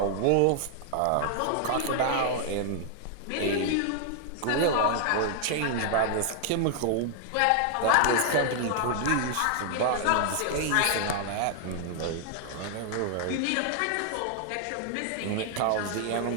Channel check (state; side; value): different; both; correlation 0.00